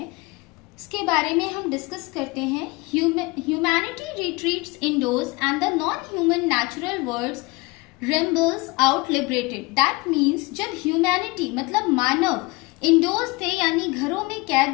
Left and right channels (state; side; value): quieter; right; 25.1 dB